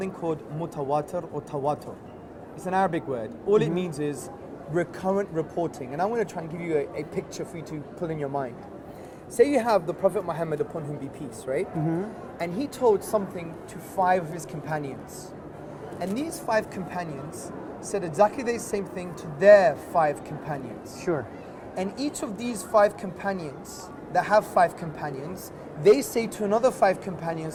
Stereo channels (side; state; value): both; identical; correlation 1.00